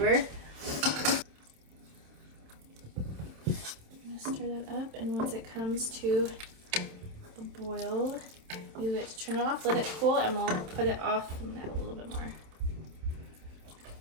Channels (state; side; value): late; left; 27 ms